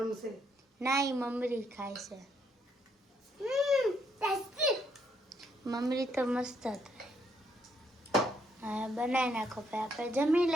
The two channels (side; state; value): both; normal; correlation 0.73